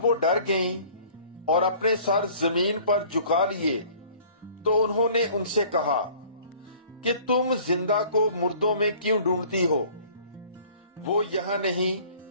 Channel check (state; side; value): inverted; both; correlation -0.51